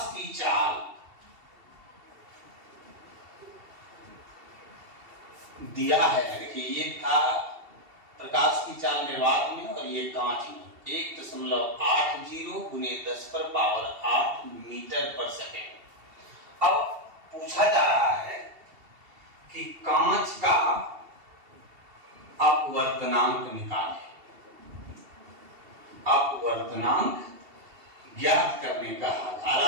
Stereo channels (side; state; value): left; late; 2.7 ms